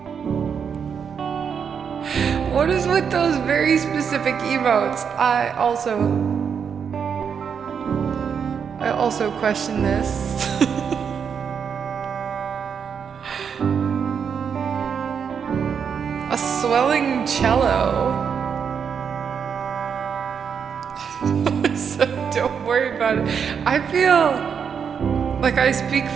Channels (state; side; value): quieter; left; 7.0 dB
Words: what is with those very specific emotes? I also question this. A swelling cello. So don't worry about it. I feel like I speak